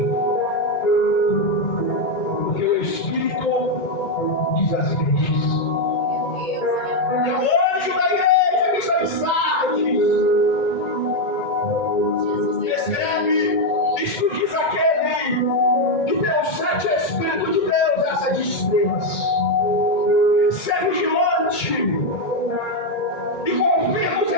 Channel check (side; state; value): right; late; 2.2 ms